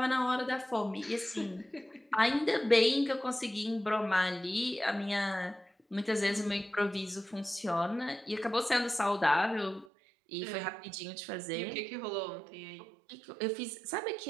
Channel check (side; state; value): left; drops out; at 9.9 s